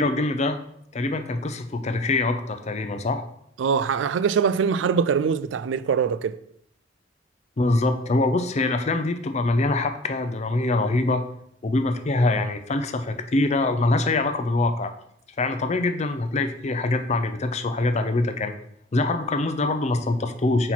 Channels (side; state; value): both; normal; correlation 0.41